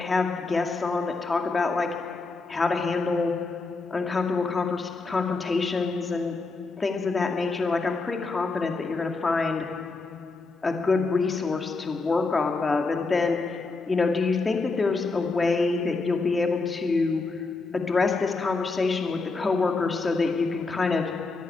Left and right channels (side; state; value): right; quieter; 3.8 dB